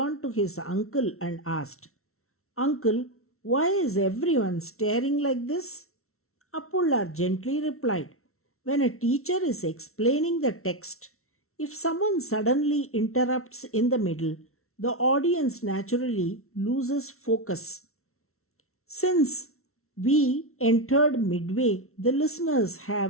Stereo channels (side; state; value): right; late; 0.63 ms